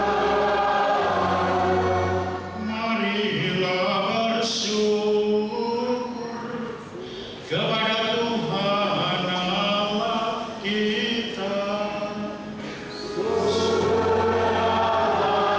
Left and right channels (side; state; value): both; identical; correlation 1.00